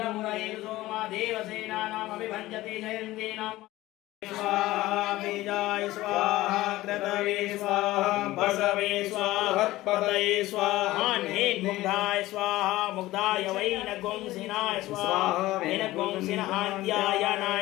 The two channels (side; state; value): right; quieter; 17.2 dB